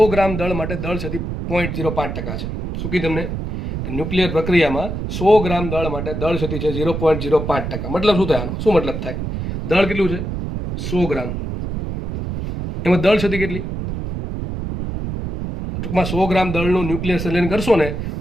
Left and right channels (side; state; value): right; noise; rumble, 5 dB below the sound